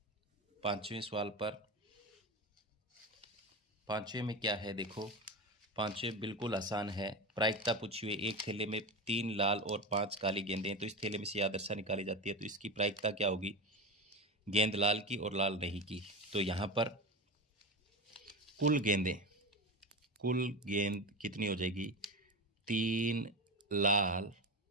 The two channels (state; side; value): normal; both; correlation 0.22